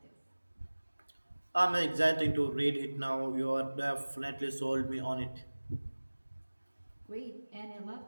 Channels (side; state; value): both; inverted; correlation -1.00